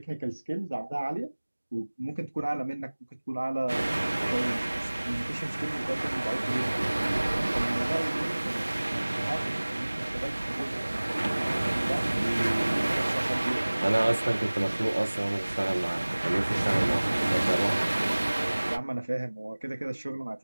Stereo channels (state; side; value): inverted; both; correlation -1.00